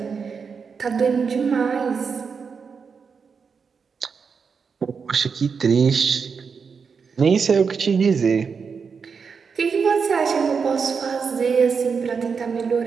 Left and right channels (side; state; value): left; quieter; 5.7 dB